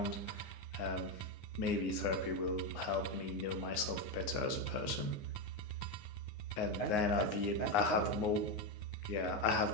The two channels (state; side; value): late; right; 9.6 ms